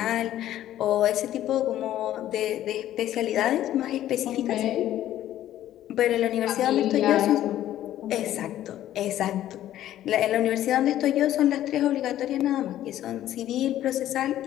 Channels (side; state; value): right; quieter; 12.7 dB